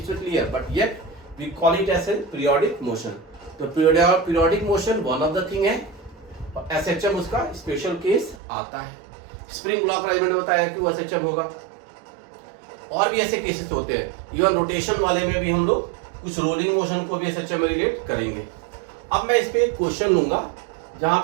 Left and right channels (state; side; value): drops out; left; at 8.3 s